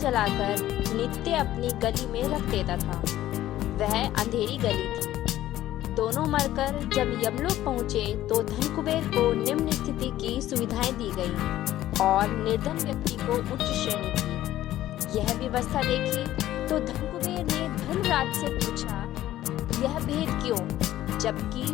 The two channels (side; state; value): right; quieter; 13.9 dB